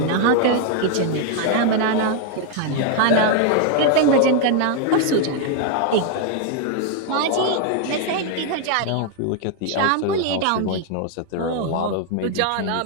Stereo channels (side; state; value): both; different; correlation 0.00